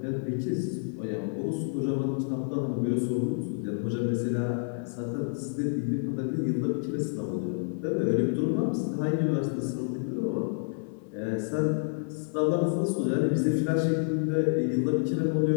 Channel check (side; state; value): right; silent; digital silence